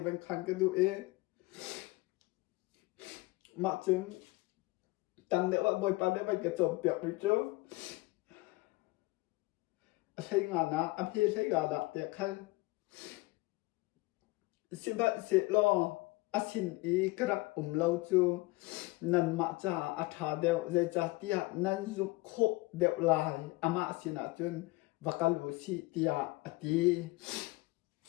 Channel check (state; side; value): quieter; right; 22.0 dB